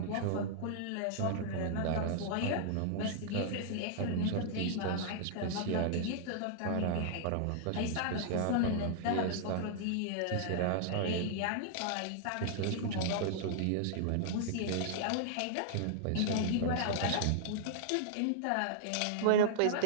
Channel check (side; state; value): both; different; correlation -0.01